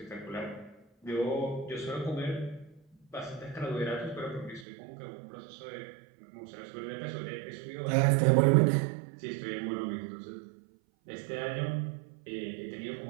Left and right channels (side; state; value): left; drops out; at 4.7 s